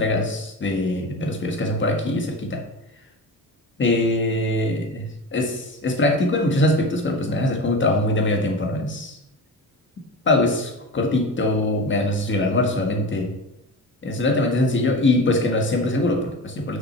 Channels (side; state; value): both; normal; correlation 0.28